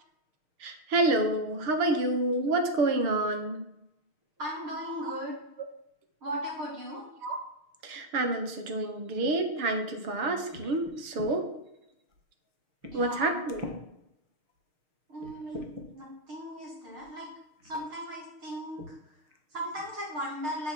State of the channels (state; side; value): late; left; 6.5 ms